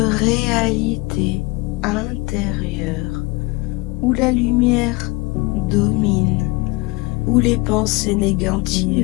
intérieure où la lumière domine, où les pensées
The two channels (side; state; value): right; quieter; 23.7 dB